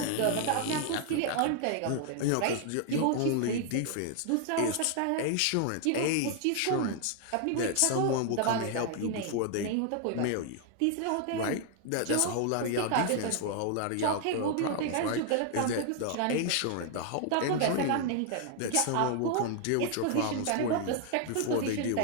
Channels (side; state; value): both; different; correlation 0.00